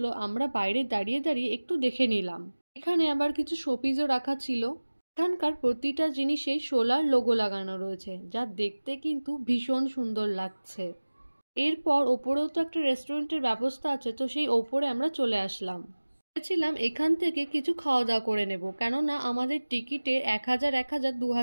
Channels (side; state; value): both; inverted; correlation -1.00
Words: আমরা বাইরে দাঁড়িয়ে দাঁড়িয়ে একটু দেখে নিলাম। এখানে আবার কিছু শোপিসও রাখা ছিল। এখানকার প্রতিটা জিনিসেই সোলার লোগো লাগানো রয়েছে, যা দেখতে কিন্তু ভীষণ সুন্দর লাগছে। এরপর ওপরেও তো একটা রেস্টুরেন্টের ব্যবস্থা আছে, তো সেই ওপরে আমরা চলে আসলাম। ভেবেছিলাম এখান থেকে কিছু খাওয়া দাওয়া করে নেব, কেননা আমাদের টিকিটে 1000,